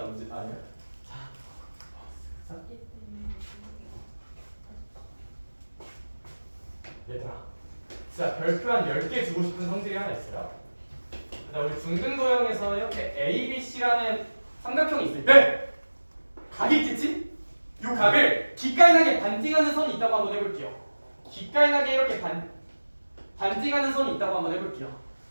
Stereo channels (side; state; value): both; inverted; correlation -1.00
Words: 언제? 아니야. 자, 얘들아, 진짜 별표 한 10개 주고 싶은 성질이 하나 있어요. 우리 중등도형에서 이렇게 ABC라는 삼각형이 있을 때 각이 있겠지? 이 각을 기깔나게 반띵하는 선이 있다고 한번 해볼게요. 기깔나게 이렇게 반띵하는 선이 있다고 한번 해볼게요.